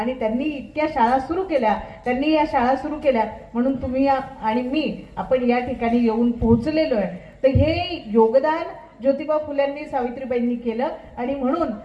त्यांनी इतक्या शाळा सुरू केल्या. त्यांनी या शाळा सुरू केल्या म्हणून तुम्ही आणि मी आपण या ठिकाणी येऊन पोहोचलेलो आहे. तर हे योगदान ज्योतिबा फुल्यांनी सावित्रीबाईंनी केलं आणि म्हणून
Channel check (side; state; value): both; identical; correlation 1.00